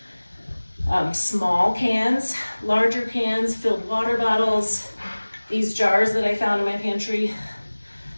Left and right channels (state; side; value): inverted; both; correlation -1.00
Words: small cans, larger cans, filled water bottles, these jars that I found in my pantry.